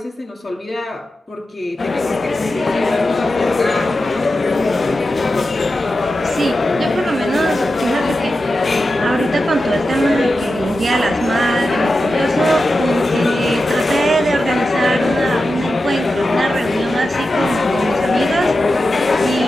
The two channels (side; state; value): both; normal; correlation 0.91